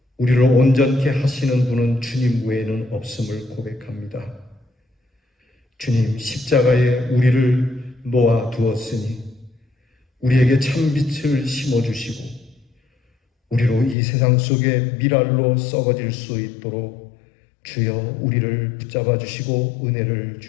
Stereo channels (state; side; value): drops out; right; at 14.0 s